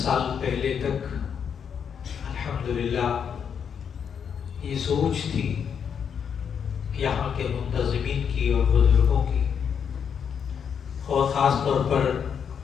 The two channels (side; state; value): right; quieter; 7.4 dB